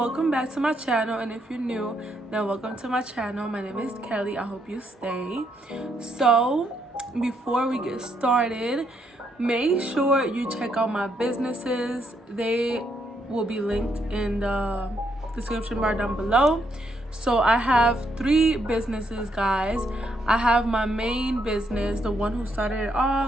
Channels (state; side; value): normal; both; correlation 0.76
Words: back to my channel, and if you're new, then welcome to my channel. My name is Kelly. I hope you stay. So before we get started, make sure you check out my businesses. They will be linked in the description bar down below. So I have 3 businesses, guys. I have my main business, the one who started it